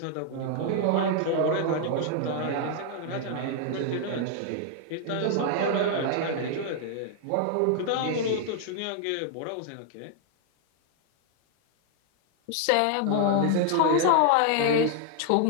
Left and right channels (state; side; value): different; both; correlation 0.00